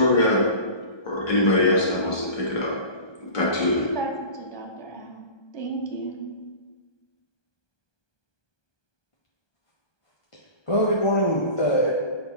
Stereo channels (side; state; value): right; late; 1.2 ms